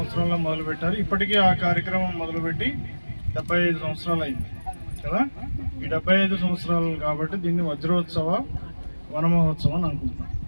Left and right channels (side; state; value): both; inverted; correlation -1.00